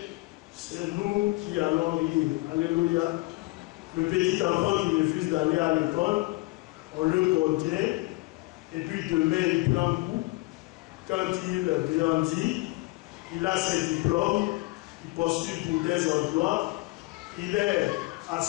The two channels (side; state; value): right; quieter; 22.7 dB